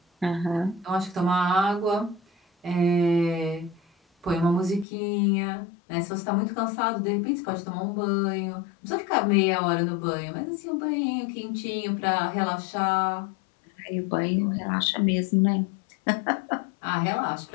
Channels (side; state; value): right; drops out; at 4.9 s